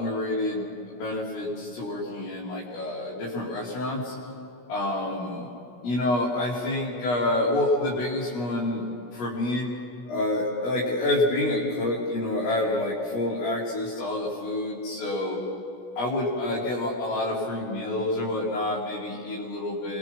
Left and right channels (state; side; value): late; right; 17 ms